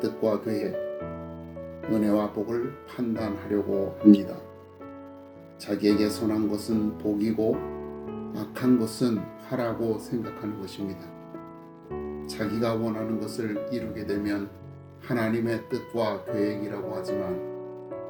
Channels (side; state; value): both; identical; correlation 1.00